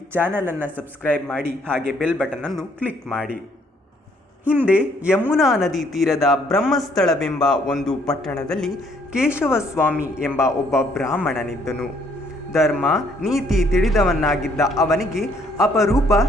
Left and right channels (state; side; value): normal; both; correlation 0.66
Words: ಚಾನಲನ್ನು ಸಬ್ಸ್ಕ್ರೈಬ್ ಮಾಡಿ, ಹಾಗೆ ಬೆಲ್ ಬಟನನ್ನು ಕ್ಲಿಕ್ ಮಾಡಿ. ಹಿಂದೆ ಯಮುನಾ ನದಿ ತೀರದ ಬ್ರಹ್ಮಸ್ಥಳವೆಂಬ ಒಂದು ಪಟ್ಟಣದಲ್ಲಿ ಕೇಶವಸ್ವಾಮಿ ಎಂಬ ಒಬ್ಬ ಬ್ರಾಹ್ಮಣನಿದ್ದನು. ಧರ್ಮ ನೀತಿ ತಿಳಿದವನಾಗಿದ್ದ ಅವನಿಗೆ ಅಪರೂಪ